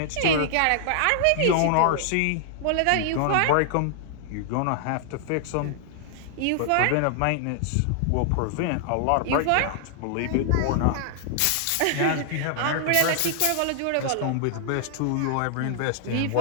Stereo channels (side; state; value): both; different; correlation -0.01